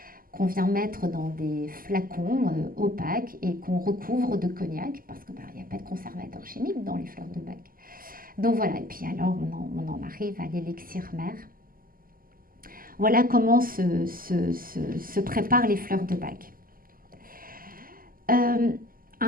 qu'on vient mettre dans des flacons opaques et qu'on recouvre de cognac parce qu'il n'y a pas de conservateur chimique dans les fleurs de bac. Donc voilà, et puis alors on en arrive à l'élixir mère. Voilà comment se préparent les fleurs de bac.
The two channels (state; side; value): late; left; 0.42 ms